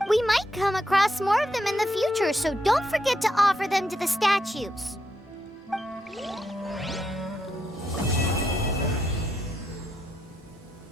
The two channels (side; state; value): both; normal; correlation 0.80